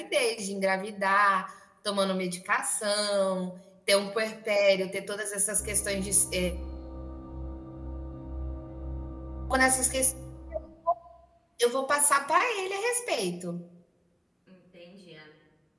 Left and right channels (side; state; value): both; identical; correlation 1.00